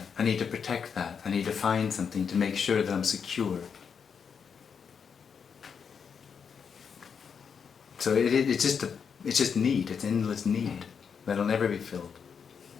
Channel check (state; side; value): quieter; right; 6.6 dB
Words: I need to protect that. I need to find something to make sure that I'm secure. So it's just need. It's endless need that'll never be filled.